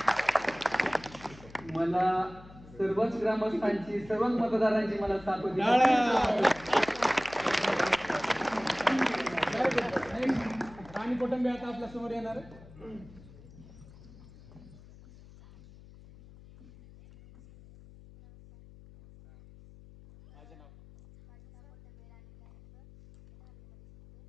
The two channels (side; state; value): left; noise; hum, 21 dB below the sound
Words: मला सर्वच ग्रामस्थांची, सर्वच मतदारांची मला साथ होती. राणी कुटुंबी आता आपल्या समोर येणार आहे.